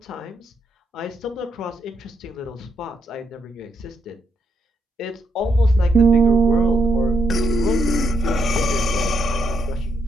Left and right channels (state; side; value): normal; both; correlation 0.78